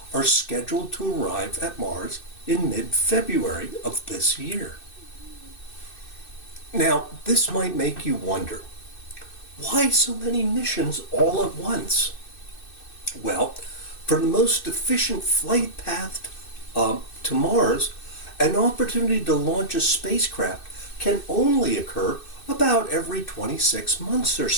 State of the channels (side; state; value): right; late; 2.6 ms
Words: are scheduled to arrive at Mars in mid-February of this year. Now, this might make you wonder, why so many missions all at once? Well, for the most efficient flight path to Mars, an opportunity to launch a spacecraft can only occur about every 26 months or